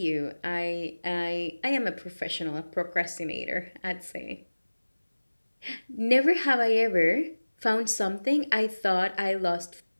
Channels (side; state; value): both; inverted; correlation -1.00